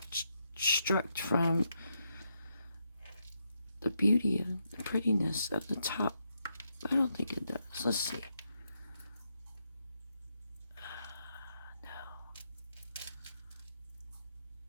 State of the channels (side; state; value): both; inverted; correlation -0.81